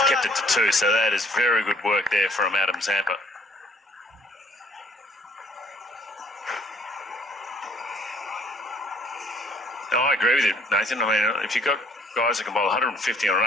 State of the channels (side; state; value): both; normal; correlation 0.61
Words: kept it to 2, so that is very good work there from Adam Zampa. No, I agree with you, Nathan. I mean, if you've got guys that can bowl 150 on an